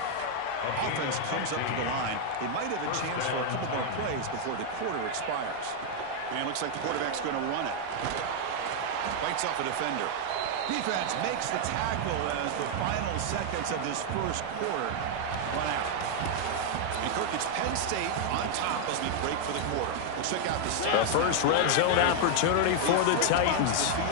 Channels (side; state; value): both; different; correlation 0.00